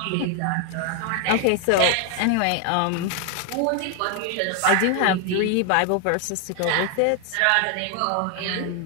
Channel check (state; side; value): different; both; correlation 0.00